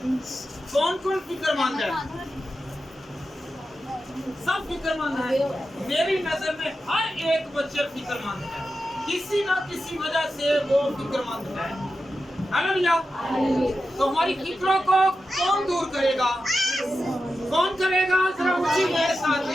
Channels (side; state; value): both; normal; correlation 0.91